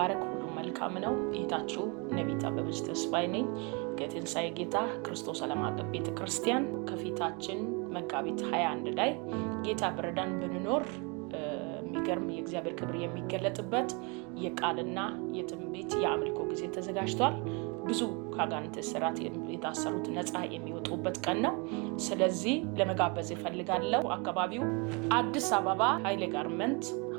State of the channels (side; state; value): left; quieter; 31.3 dB